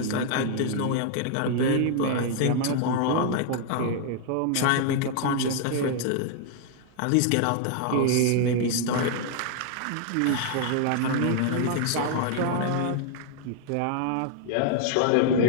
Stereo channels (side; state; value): both; different; correlation 0.00